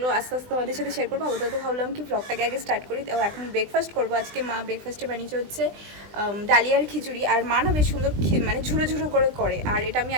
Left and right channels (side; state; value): left; late; 20 ms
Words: আস্তে আস্তে তোমাদের সাথে শেয়ার করবো। তো ভাবলাম কি ব্লগটাকে আগে স্টার্ট করি। তো এখন ব্রেকফাস্ট করবো। আজকে মা ব্রেকফাস্টে বানিয়েছে হচ্ছে ডালিয়ার খিচুড়ি। আর মা না বেশ সুন্দর ঝুড়ো ঝুড়ো করে। আর এটা আমি